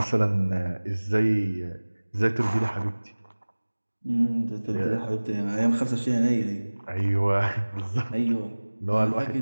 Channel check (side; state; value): both; inverted; correlation -1.00